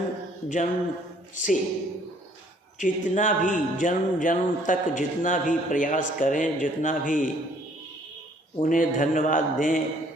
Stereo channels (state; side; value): normal; both; correlation 0.61